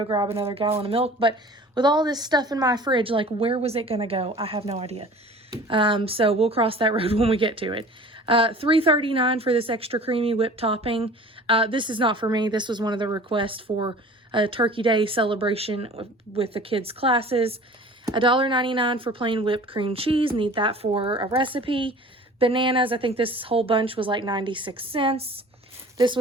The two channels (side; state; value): both; normal; correlation 0.44